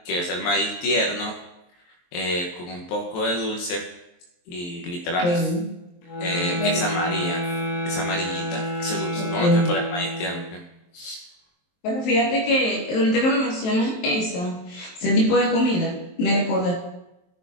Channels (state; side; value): late; right; 23 ms